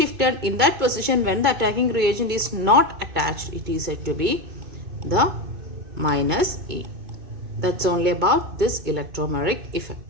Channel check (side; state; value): left; late; 2.2 ms